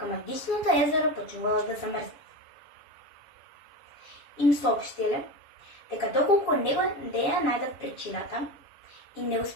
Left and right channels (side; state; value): right; late; 7.1 ms